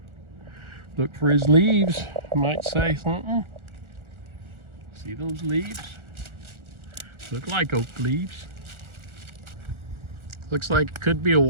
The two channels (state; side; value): late; left; 1.4 ms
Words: Look for his leaves. Might say something. See those leaves? Look like oak leaves. Looks like it could be a